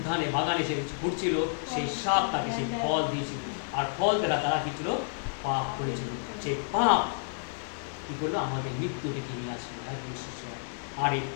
বাগানে সে ঘুরছিল, সেই সাপ তাকে সেই ফল দিয়েছিল, আর ফল দ্বারা তারা কি ছিল? পাপ করেছিল। সেই পাপ কি করলো? আমাদের মৃত্যু ডেকে নিয়ে আসলো। আর এই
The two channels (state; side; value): silent; right; digital silence